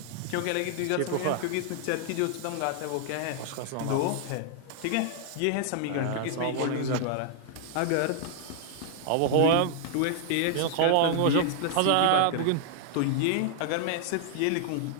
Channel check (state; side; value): different; both; correlation -0.01